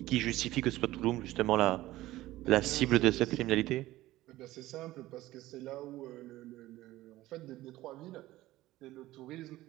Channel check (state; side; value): quieter; left; 16.6 dB